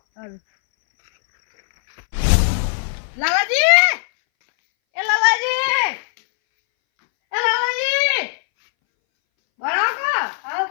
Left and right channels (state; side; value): silent; right; 64 dB below the other